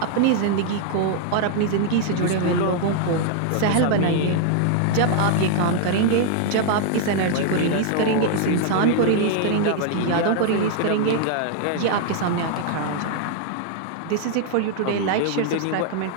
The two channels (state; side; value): different; both; correlation 0.00